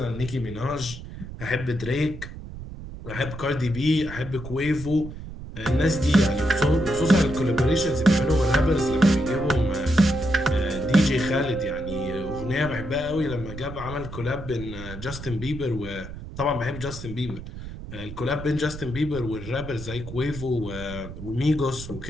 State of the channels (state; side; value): noise; right; rumble, 11 dB below the sound